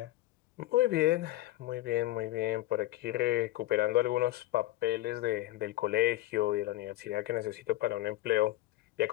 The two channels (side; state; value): right; quieter; 16.3 dB